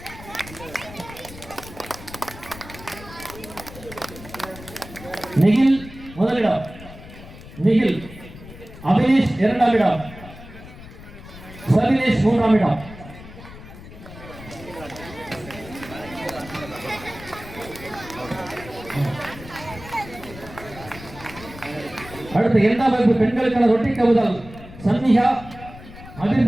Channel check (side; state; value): left; noise; rumble, 16 dB below the sound